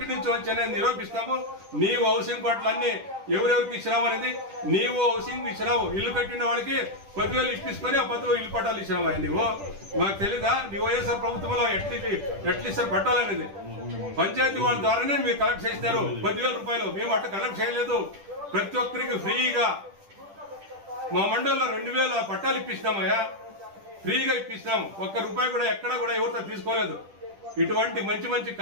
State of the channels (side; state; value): left; late; 10 ms